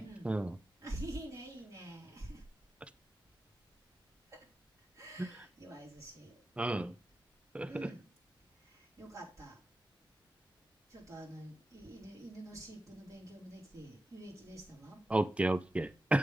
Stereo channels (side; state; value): both; normal; correlation 0.92